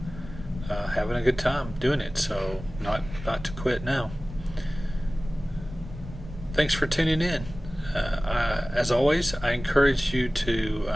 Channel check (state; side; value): normal; both; correlation 0.98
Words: Having a good time doing it, so not to quit now. Thanks for tuning in. As always, I encourage you